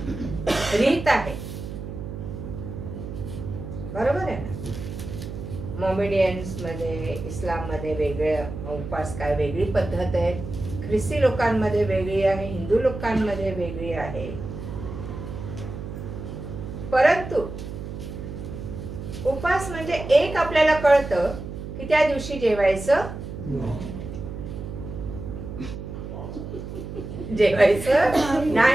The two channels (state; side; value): noise; right; hum, 9 dB below the sound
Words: रीत आहे. बरोबर आहे ना? मोमेडियन्स मध्ये, इस्लाम मध्ये वेगळे उपवास, काय वेगळी पद्धत आहे. ख्रिस्ती लोकांमध्ये वेगळी आहे, हिंदू लोकांमध्ये वेगळी आहे. परंतु उपवास म्हणजे एक आपल्याला कळतं की त्या दिवशी जेवायचं